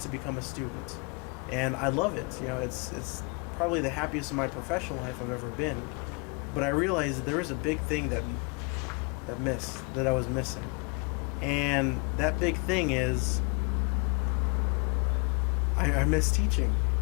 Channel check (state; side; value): quieter; right; 32.1 dB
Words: to become a student, and I love it. It's probably the happiest in my professional life I've ever been. But I realized that there was a big thing that I was missing. And that big thing is I miss teaching.